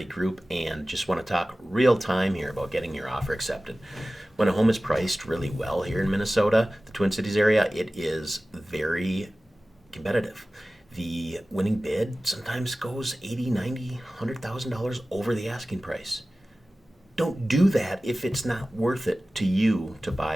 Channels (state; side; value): normal; both; correlation 0.96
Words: Group and just want to talk real time here about getting your offer accepted. When a home is priced really well here in Minnesota, the Twin Cities area, it is very competitive. The winning bid sometimes goes 80, 90, $100,000 over the asking price. Don't do that if it's not worth it to you to